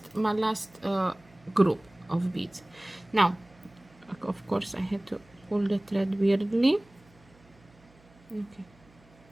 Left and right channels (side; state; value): right; noise; hum, 28 dB below the sound